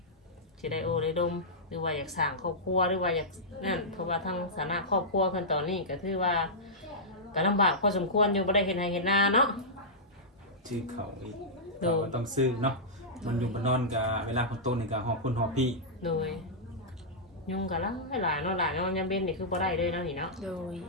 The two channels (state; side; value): normal; both; correlation -0.12